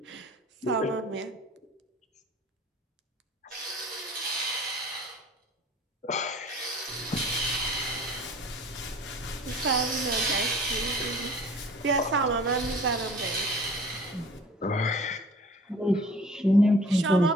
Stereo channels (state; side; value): normal; both; correlation 0.47